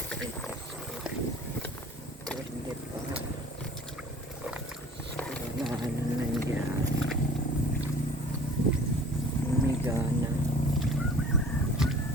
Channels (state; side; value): normal; both; correlation 0.47